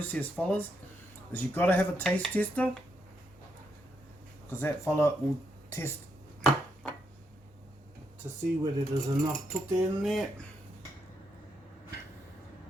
fellas, is you've got to have a taste tester, because that fella will test to see whether there's enough tutte in there.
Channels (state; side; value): normal; both; correlation 0.80